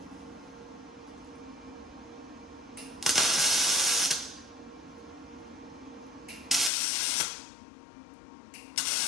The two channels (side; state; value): right; drops out; at 6.7 s